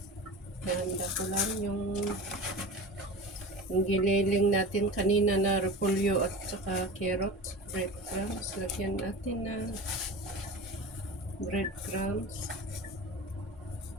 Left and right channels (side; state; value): both; normal; correlation 0.32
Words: handa ko lang yung giniling natin kanina na repolyo at saka carrots. Breadcrumbs. Lagyan natin ng breadcrumbs.